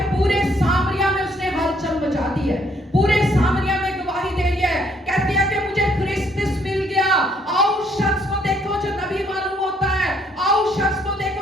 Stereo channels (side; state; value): both; normal; correlation 0.67